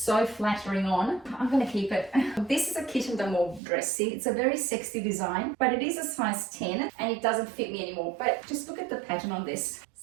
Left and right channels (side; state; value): left; drops out; at 3.6 s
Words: so flattering on. I'm gonna keep it. This is a kitten de mauve dress. See, it's a very sexy design, but it is a size 10 and it doesn't fit me anymore. But just look at the pattern on this.